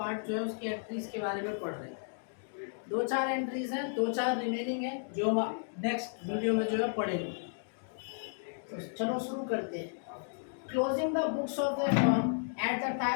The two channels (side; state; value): right; silent; digital silence